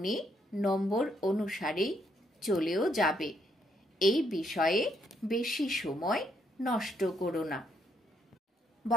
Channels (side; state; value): both; normal; correlation 0.74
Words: নম্বর অনুসারেই চলেও যাবে। এই বিষয়ে বেশি সময় নষ্ট করো না।